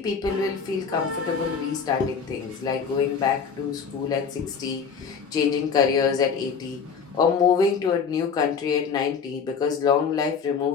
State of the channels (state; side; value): quieter; right; 6.0 dB